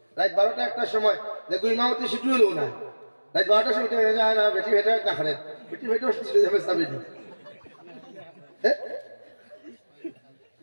রাত 12টা একটার সময় দেখো ইমামতি ছুটি হলো না রাত 12টার সময় যায় না বেটি ভেটা না খারে বেটি ভেটা চলে যাবে সাবে নি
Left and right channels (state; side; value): inverted; both; correlation -1.00